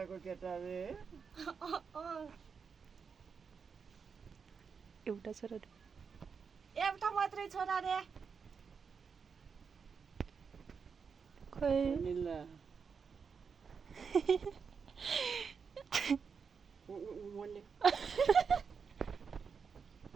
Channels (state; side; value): quieter; left; 5.9 dB